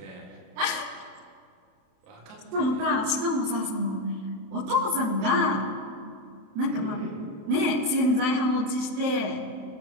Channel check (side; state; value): left; late; 27 ms